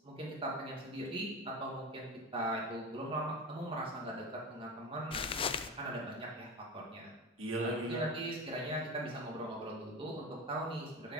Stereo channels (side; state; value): both; normal; correlation 0.25